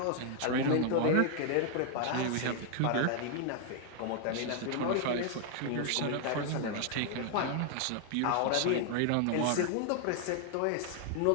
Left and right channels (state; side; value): different; both; correlation 0.00